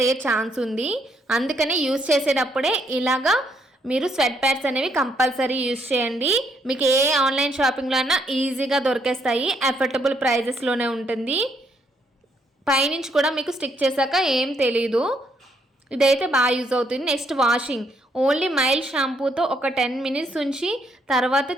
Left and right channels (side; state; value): both; normal; correlation 0.73